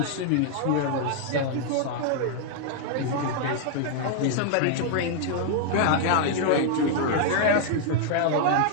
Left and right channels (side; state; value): both; different; correlation 0.00